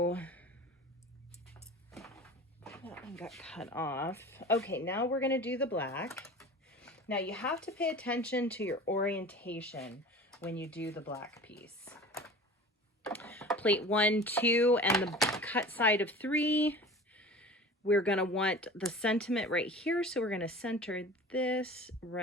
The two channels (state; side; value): normal; both; correlation 0.39